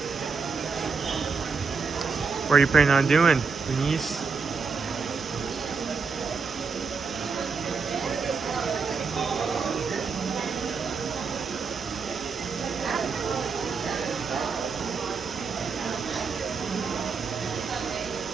What are you planning on doing, Denise?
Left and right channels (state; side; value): quieter; left; 5.1 dB